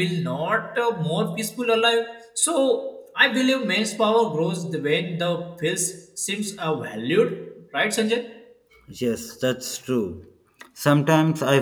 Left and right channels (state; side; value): identical; both; correlation 1.00